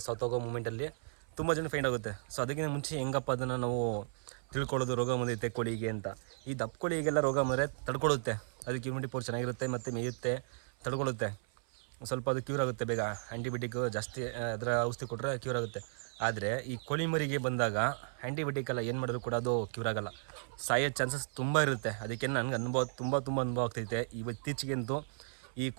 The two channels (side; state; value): left; silent; 54 dB below the other